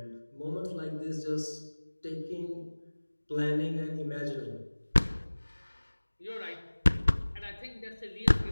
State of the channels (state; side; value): inverted; both; correlation -1.00